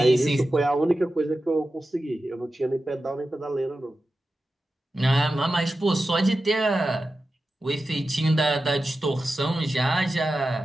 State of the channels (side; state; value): both; normal; correlation 0.92